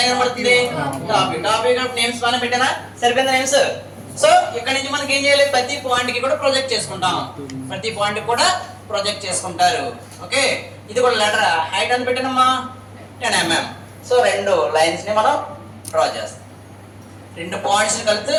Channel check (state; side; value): identical; both; correlation 1.00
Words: ఏం కనబడుతుంది? Top view. నేమ్స్ పైన పెట్టానా? సరిపోయిందా నేమ్స్? సో ఇక్కడ నుంచి మనకి ఏం చేయాలి? ప్రతి పాయింట్ కి కూడా ప్రొజెక్ట్ చేసుకుంటాం. ప్రతి పాయింట్ కూడా ప్రొజెక్ట్ చేసుకుంటారు. ఓకే, ఇది కూడా లెటర్ హైట్ అని పెట్టానమ్మా 10 mm. సో 2 లైన్స్ ని మనం డ్రా చేస్తాం. 2 పాయింట్స్ కలిసి